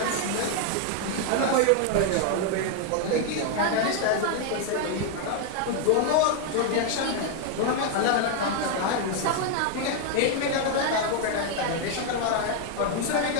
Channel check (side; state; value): both; different; correlation 0.01